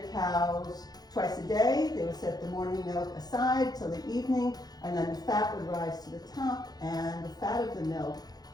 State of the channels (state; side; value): late; right; 0.19 ms